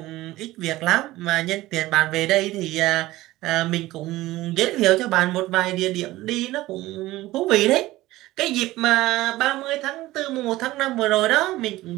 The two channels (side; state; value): left; quieter; 17.4 dB